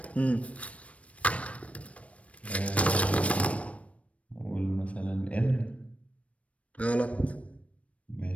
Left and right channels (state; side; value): late; right; 0.064 ms